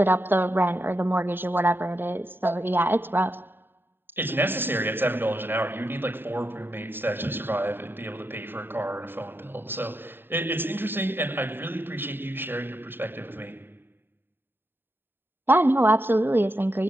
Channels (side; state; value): left; late; 0.098 ms